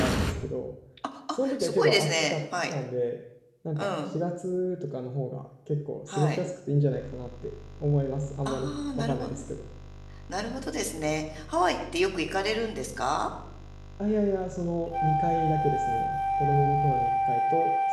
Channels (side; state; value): both; identical; correlation 1.00